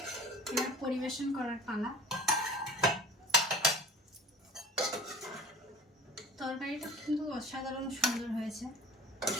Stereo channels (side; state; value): both; normal; correlation 0.44